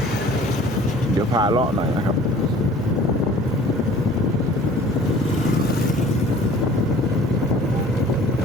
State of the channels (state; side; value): noise; right; hum, 22 dB below the sound